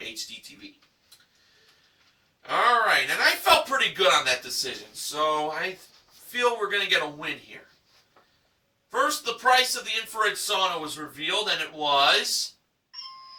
TV. All right, and I felt pretty good on that decision, so I feel we're going to get a win here. First, the price of the infrared sauna was revealed, and it was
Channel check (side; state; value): both; identical; correlation 1.00